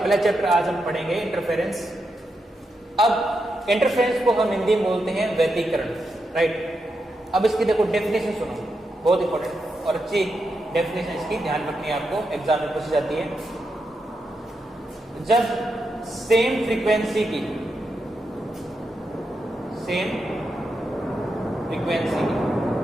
चैप्टर आज हम पढ़ेंगे इंटरफेरेंस। अब इंटरफेरेंस को हम हिंदी में बोलते हैं व्यतिकरण, राइट। अब इसकी देखो डेफिनेशन सुनो, बहुत इंपॉर्टेंट और अच्छी डेफिनेशन इसकी ध्यान रखनी है, आपको एग्जाम में पूछी जाती है। जब सेम फ्रीक्वेंसी की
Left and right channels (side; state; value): both; normal; correlation 0.85